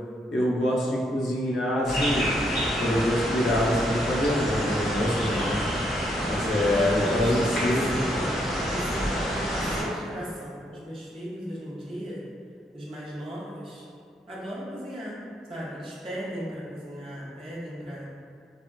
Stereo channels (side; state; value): both; normal; correlation 0.74